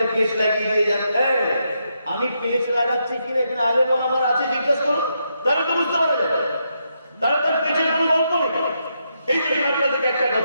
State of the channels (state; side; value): inverted; both; correlation -0.81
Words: পেঁচ লাগিয়ে দিয়ে যান। আমি পেঁচ লাগাচ্ছি কিনা এখানে আলেম ওলামার আছে জিজ্ঞেস করুন, তাহলে তো বুঝতে পারা যাবে। তাহলে তার পেঁচের কোনো গল্প নেই। এই জন্য আপনাদেরকে একটা